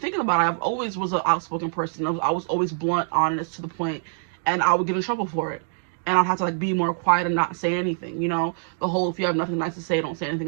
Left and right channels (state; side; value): silent; left; digital silence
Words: about it, I've always was an outspoken person. I was always blunt, honest, to the point, and I would get in trouble for it. And I'd have to like be more quiet and not say anything, you know? The whole, if you have nothing nice to say, don't say